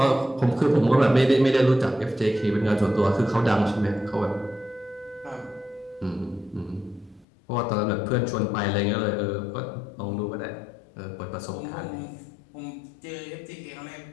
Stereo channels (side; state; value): right; drops out; at 7.2 s